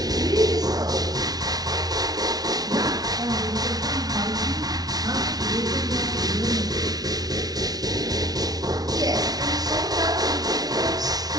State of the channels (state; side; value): late; left; 0.19 ms